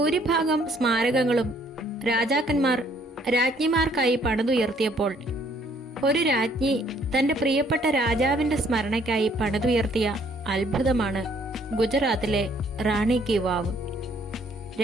സ്മാരകങ്ങളും രാജാക്കന്മാർ രാജ്ഞിമാർക്കായി പണിതുയർത്തിയപ്പോൾ ഒരു രാജ്ഞി തന്റെ പ്രിയപ്പെട്ട രാജാവിന്റെ സ്മരണയ്ക്കായി പണിതുയർത്തിയ അത്ഭുതമാണ് ഗുജറാത്തിലെ റാണി കി വാവ്.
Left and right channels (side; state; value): both; normal; correlation 0.63